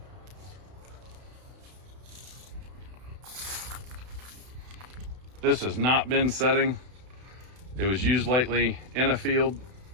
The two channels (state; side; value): late; left; 32 ms